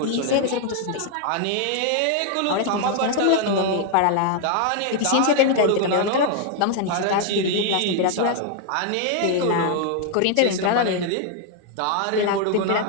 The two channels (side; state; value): both; different; correlation 0.00